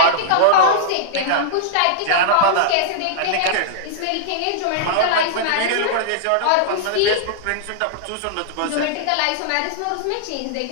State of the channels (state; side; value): different; both; correlation -0.02